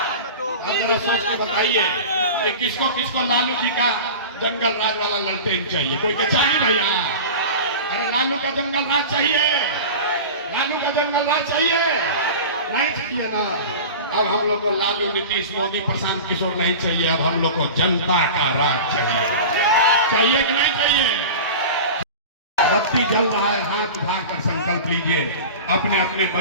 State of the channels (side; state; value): both; inverted; correlation -0.32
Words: अब जरा सोच के बताइए कि किसको किसको लालू जी का जंगल राज वाला ललटेन चाहिए? कोई के चाहिए भैया? अरे लालू का जंगल राज चाहिए? लालू का जंगल राज चाहिए? नहीं चाहिए ना। अब हम लोग को लालू, नीतीश, मोदी, प्रशांत किशोर नहीं चाहिए। अब हम लोग को जनता का राज चाहिए। चाहिए कि नहीं चाहिए? बत्ती जल रहा है, हाथ उठाकर संकल्प लीजिए। अपने अपने